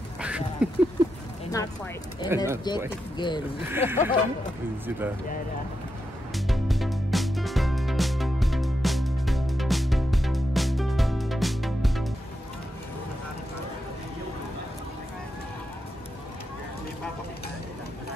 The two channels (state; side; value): normal; both; correlation 0.86